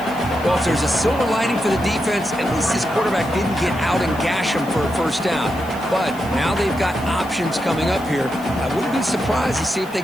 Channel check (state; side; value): noise; left; hiss, 21 dB below the sound